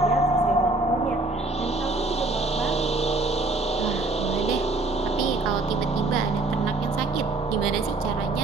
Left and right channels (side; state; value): left; quieter; 3.1 dB